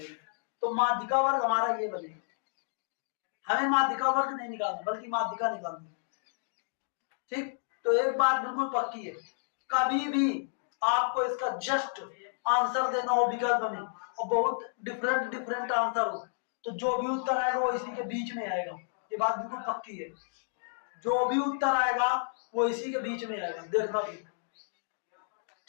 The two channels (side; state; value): right; silent; digital silence